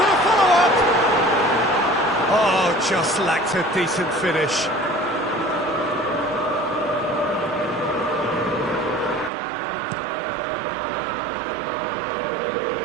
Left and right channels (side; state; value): left; drops out; at 9.3 s